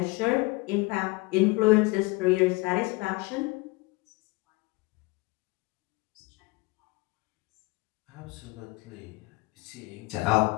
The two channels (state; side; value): quieter; right; 24.4 dB